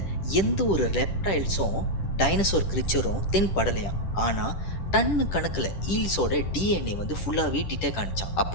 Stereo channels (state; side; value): late; right; 10 ms